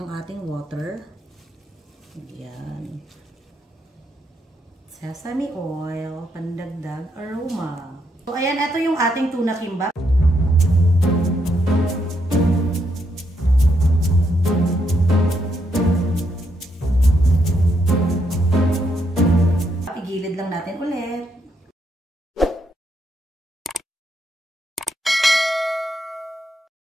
ating water. Ayan. Sesame oil, pandagdag aroma. So, ayan, ito yung ating tuna kimbap. lang natin ulit.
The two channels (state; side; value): normal; both; correlation 0.77